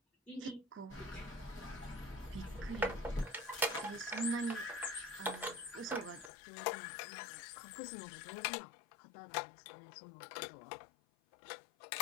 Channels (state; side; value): drops out; right; at 6.3 s